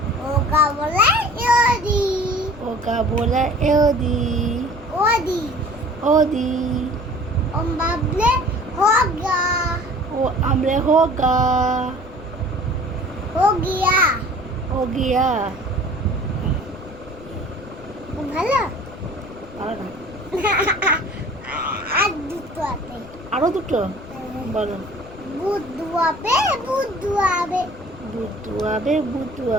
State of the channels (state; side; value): noise; left; rumble, 20 dB below the sound